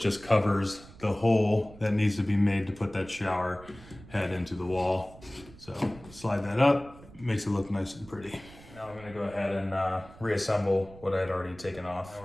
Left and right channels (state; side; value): noise; right; rumble, 20 dB below the sound